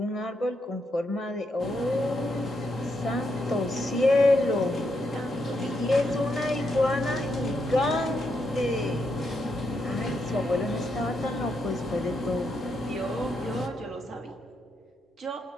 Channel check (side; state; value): both; normal; correlation 0.80